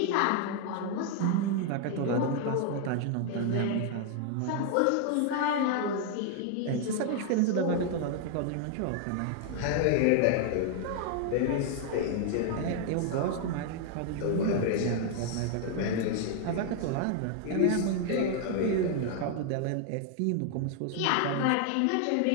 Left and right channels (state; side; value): different; both; correlation 0.00